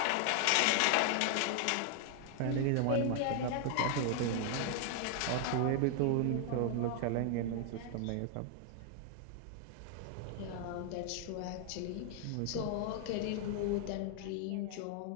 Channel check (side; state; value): both; different; correlation 0.00